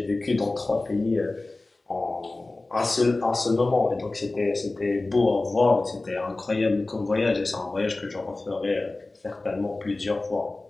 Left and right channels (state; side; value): quieter; right; 3.1 dB